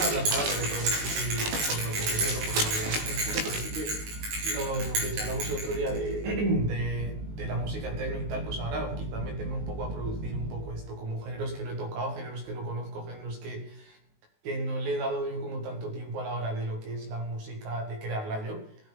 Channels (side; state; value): left; late; 19 ms